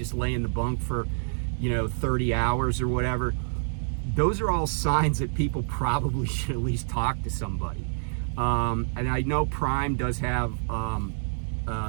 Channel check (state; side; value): silent; left; 60 dB below the other